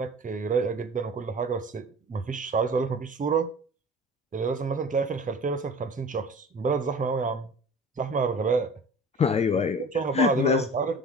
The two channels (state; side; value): normal; both; correlation 0.41